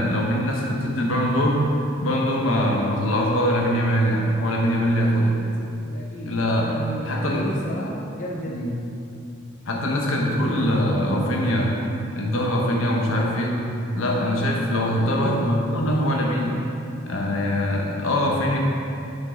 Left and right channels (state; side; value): normal; both; correlation 0.56